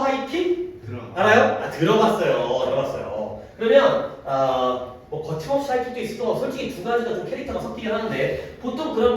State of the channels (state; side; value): identical; both; correlation 1.00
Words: 알아요? 들어봤어요. 그러면 뭐 거침없이 하이킹도 있을 거 솔직히 두 가지가 좀 캐릭터가 섞이긴 하는데 보통